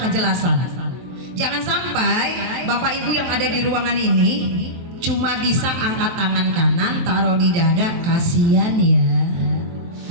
kejelasan. Jangan sampai Bapak Ibu yang ada di ruangan ini cuma bisa angkat tangan kanan taruh di dada, kasihan ya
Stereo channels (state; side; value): late; left; 23 ms